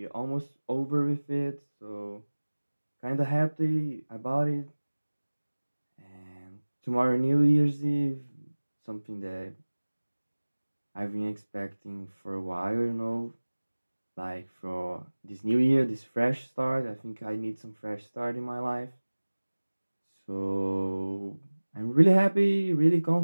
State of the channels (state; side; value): inverted; both; correlation -1.00